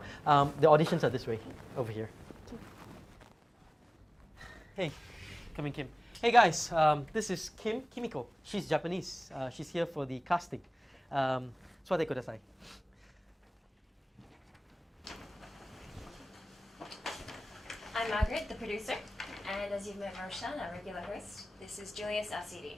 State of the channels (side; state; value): both; normal; correlation 0.98